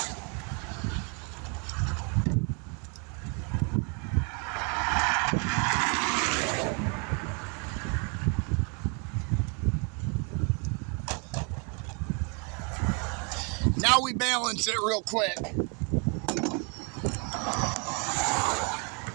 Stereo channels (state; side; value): quieter; left; 35.5 dB